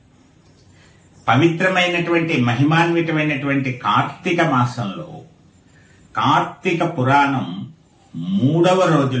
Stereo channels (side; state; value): both; identical; correlation 1.00